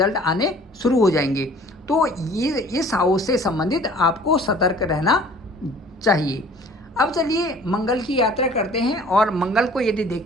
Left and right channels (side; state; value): both; normal; correlation 0.51